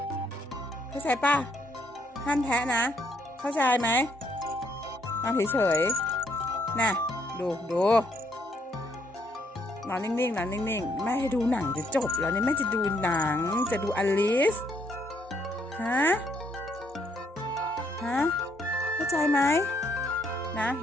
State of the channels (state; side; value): normal; both; correlation 0.71